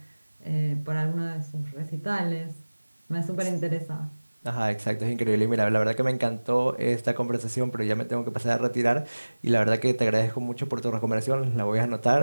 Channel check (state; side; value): inverted; both; correlation -1.00